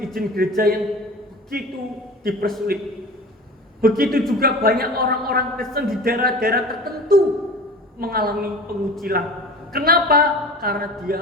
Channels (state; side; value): normal; both; correlation 0.37